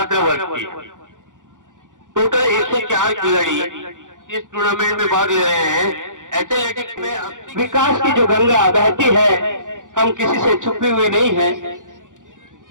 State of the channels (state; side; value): late; left; 0.87 ms